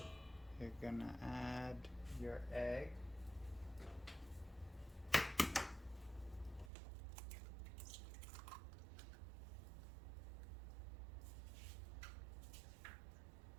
You're gonna add your egg.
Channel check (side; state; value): left; drops out; at 6.7 s